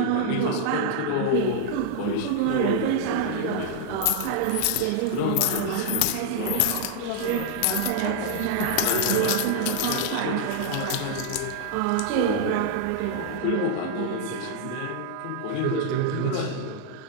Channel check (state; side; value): different; both; correlation -0.01